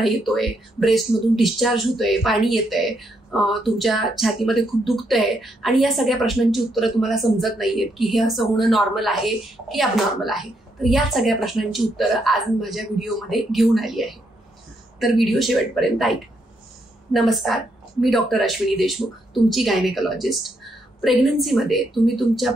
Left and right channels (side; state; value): both; normal; correlation 0.77